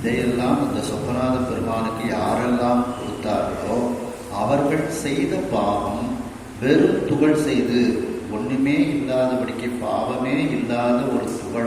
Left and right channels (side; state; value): both; identical; correlation 1.00